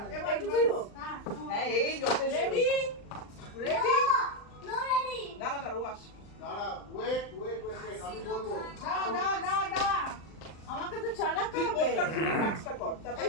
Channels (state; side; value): late; right; 39 ms